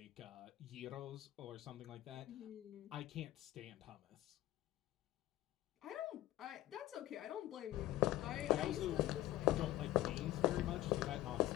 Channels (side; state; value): right; quieter; 15.1 dB